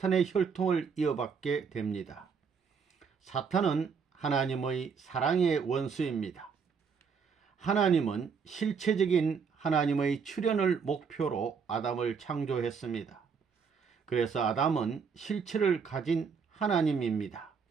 혈통을 이어받게 됩니다. 사탄은 하나님의 사랑의 원수입니다. 하나님은 실체적인 하나님의 출현을 목표로 아담을 창조했습니다. 그래서 아담은 실체를 가진 하나님입니다.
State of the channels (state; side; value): quieter; left; 6.0 dB